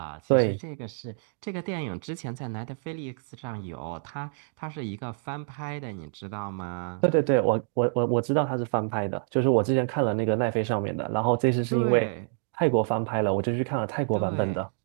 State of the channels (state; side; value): silent; left; digital silence